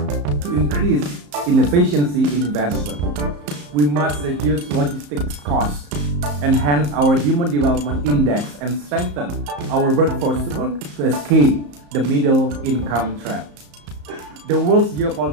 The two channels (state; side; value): late; left; 34 ms